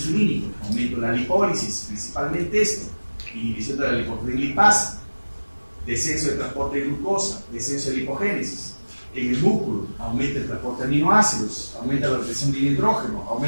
aumento de la lipólisis, principalmente esto, inhibición de la lipoproteínlipasa, descenso de transporte de glucosa, descenso de lipogénesis. En el músculo aumenta el transporte de aminoácidos, aumenta la retención de hidrógeno,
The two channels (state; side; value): inverted; both; correlation -1.00